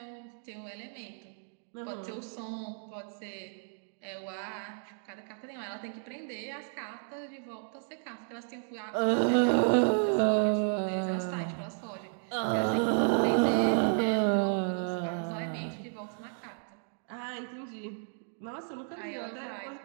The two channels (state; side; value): silent; left; digital silence